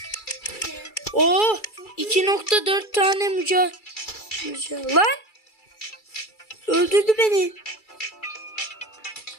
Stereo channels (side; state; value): right; late; 2.3 ms